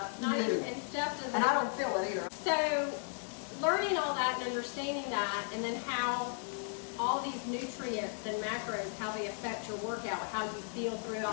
Not even, and Steph doesn't. And I don't feel it either. So, learning all that and understanding that, and then how all these nutrients and macros, how they affect your workout, how you feel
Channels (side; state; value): right; silent; 54 dB below the other